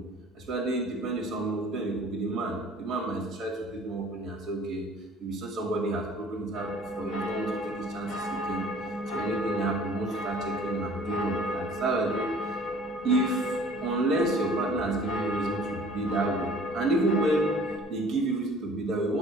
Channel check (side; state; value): both; normal; correlation 0.50